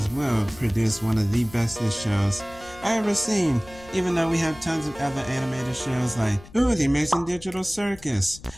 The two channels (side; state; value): left; noise; rumble, 21 dB below the sound